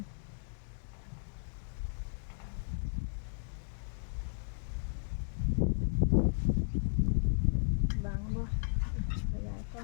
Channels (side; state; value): right; silent; digital silence